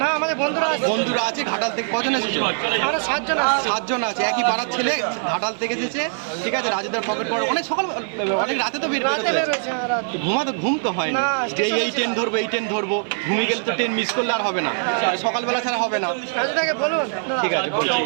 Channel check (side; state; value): left; silent; 56 dB below the other